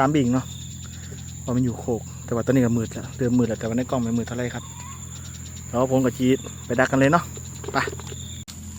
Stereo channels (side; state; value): both; identical; correlation 1.00